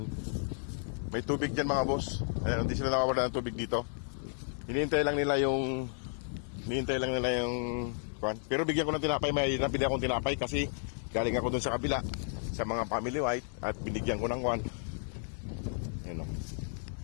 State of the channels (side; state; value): right; silent; 55 dB below the other